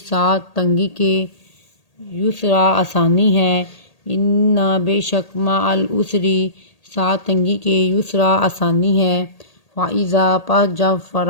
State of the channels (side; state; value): right; late; 1.8 ms